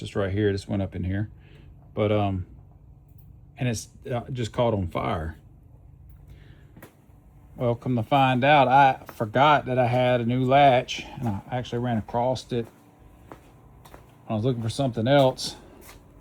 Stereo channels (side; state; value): both; identical; correlation 1.00